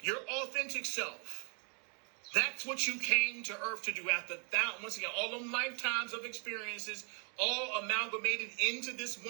Your authentic self. That's what you came to earth to do after once again, all them lifetimes of experiences, all amalgamated into this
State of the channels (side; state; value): left; quieter; 38.4 dB